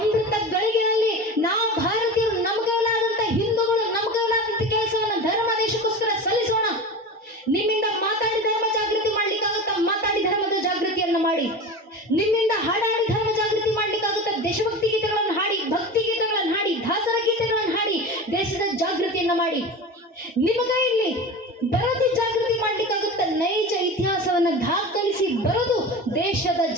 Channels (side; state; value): both; normal; correlation 0.30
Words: ಗಳಿಗೆಯಲ್ಲಿ ನಾವು ಭಾರತೀಯರು ನಮಗಲಾದಂತ ಹಿಂದೂಗಳು ನಮಗಲಾದಂತ ಕೆಲಸವನ್ನು ಧರ್ಮ ದೇಶಕ್ಕೋಸ್ಕರ ಸಲ್ಲಿಸೋಣ. ನಿಮ್ಮಿಂದ ಮಾತಾಡಿ ಧರ್ಮ ಜಾಗೃತಿ ಮಾಡ್ಲಿಕ್ಕಾಗುತ್ತಾ? ಮಾತಾಡಿ ಧರ್ಮದ ಜಾಗೃತಿಯನ್ನ ಮಾಡಿ. ನಿಮ್ಮಿಂದ ಹಾಡಾಡಿ ಧರ್ಮ ಜಾಗೃತಿ ಮಾಡ್ಲಿಕ್ಕಾಗುತ್ತಾ? ದೇಶಭಕ್ತಿ ಗೀತೆಗಳನ್ನು ಹಾಡಿ, ಭಕ್ತಿ ಗೀತೆಗಳನ್ನು ಹಾಡಿ, ದಾಸರ ಗೀತೆಗಳನ್ನು ಹಾಡಿ ದೇಶದ ಜಾಗೃತಿಯನ್ನ ಮಾಡಿ. ನಿಮ್ಮ ಕೈಯಲ್ಲಿ ಬರೆದು ಜಾಗೃತಿ ಮಾಡ್ಲಿಕ್ಕಾಗುತ್ತ? ನೈಜ ಇತಿಹಾಸವನ್ನ ದಾಖಲಿಸಿ ಬರೆದು ದೇಶದ